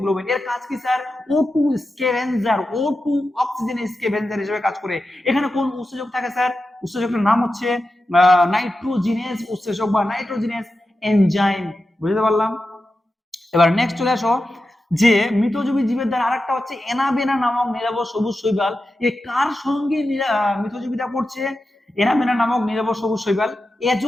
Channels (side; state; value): both; normal; correlation 0.91